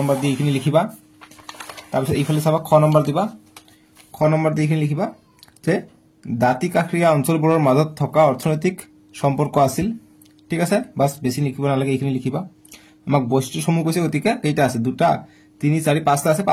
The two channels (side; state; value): both; identical; correlation 1.00